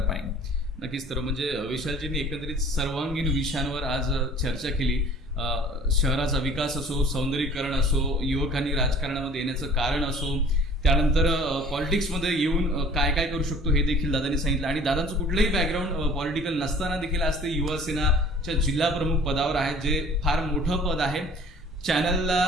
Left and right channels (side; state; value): both; normal; correlation 0.50